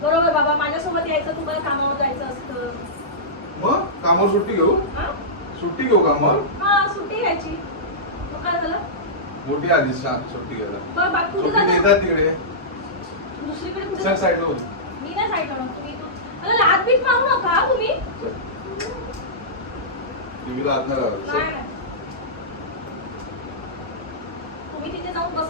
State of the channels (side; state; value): both; normal; correlation -0.15